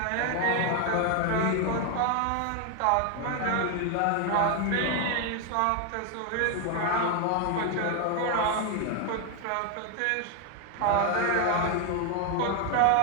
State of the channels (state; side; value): different; both; correlation 0.01